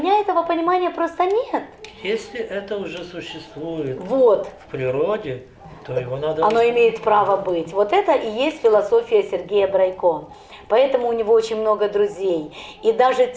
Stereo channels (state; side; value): identical; both; correlation 1.00